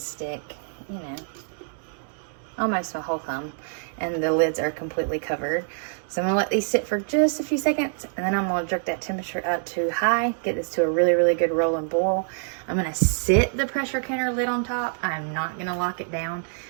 you know, almost my whole thumb, and the lids are completely covered. So I'm gonna let these sit for just a few seconds, and then I'm gonna jerk that temperature up to high, get this to a really, really good roll and boil. I'm gonna sit the pressure canner lid on top. I'm not gonna lock it down.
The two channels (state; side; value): silent; left; 61 dB below the other